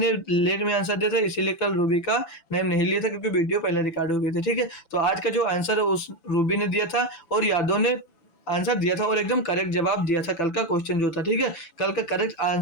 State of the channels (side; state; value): right; late; 6.0 ms